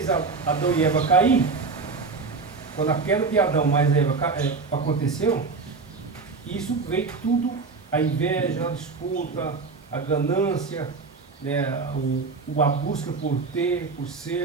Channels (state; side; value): quieter; left; 4.4 dB